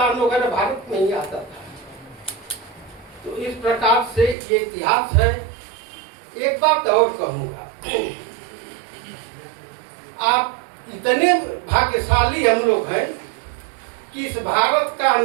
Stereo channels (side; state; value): left; drops out; at 4.4 s